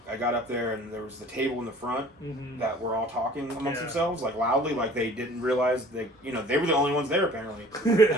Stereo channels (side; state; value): both; normal; correlation 0.49